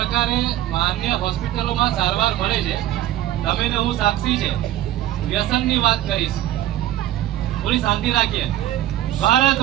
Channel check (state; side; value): quieter; left; 13.5 dB